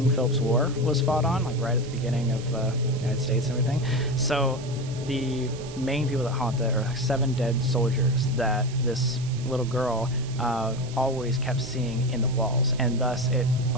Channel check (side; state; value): right; noise; hiss, 17 dB below the sound